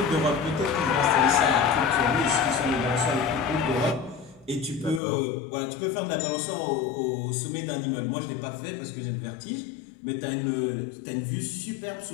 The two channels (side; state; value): right; drops out; at 5.0 s